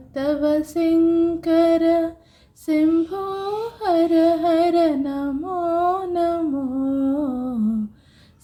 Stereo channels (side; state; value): both; identical; correlation 1.00